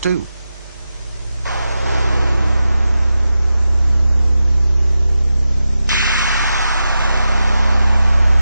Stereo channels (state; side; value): inverted; both; correlation -0.91